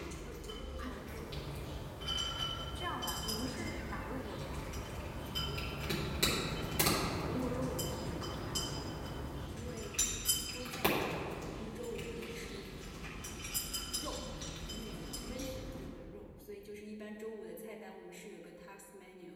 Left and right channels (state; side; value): identical; both; correlation 1.00